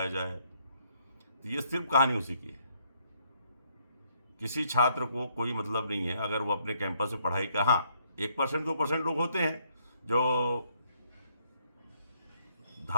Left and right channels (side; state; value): both; inverted; correlation -0.71